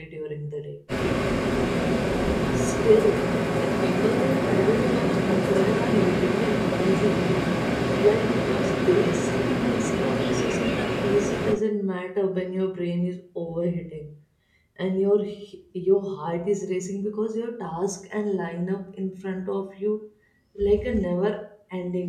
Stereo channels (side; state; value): both; identical; correlation 1.00